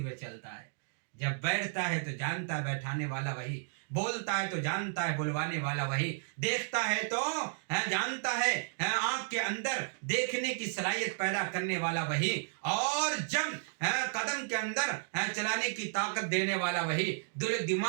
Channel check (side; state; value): left; silent; digital silence